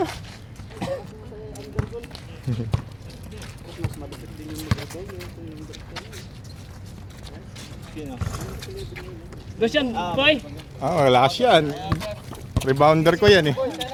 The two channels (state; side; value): identical; both; correlation 1.00